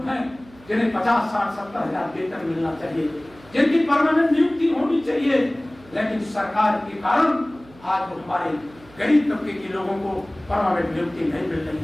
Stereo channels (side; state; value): right; noise; hum, 24 dB below the sound